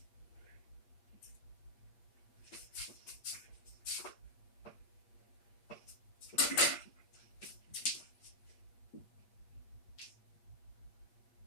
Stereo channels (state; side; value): late; right; 8.5 ms